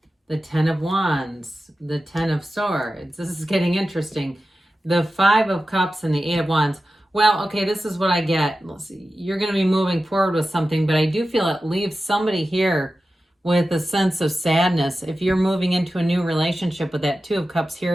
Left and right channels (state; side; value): normal; both; correlation 0.93